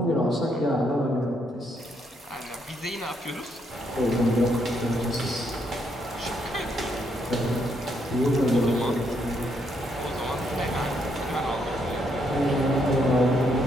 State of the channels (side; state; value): both; normal; correlation 0.75